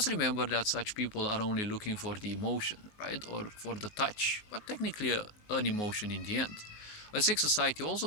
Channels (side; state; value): right; late; 19 ms